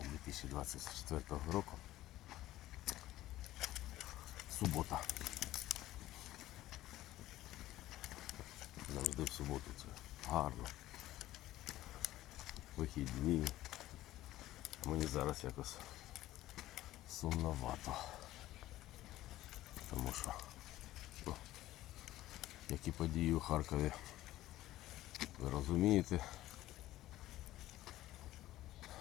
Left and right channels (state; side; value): quieter; right; 15.2 dB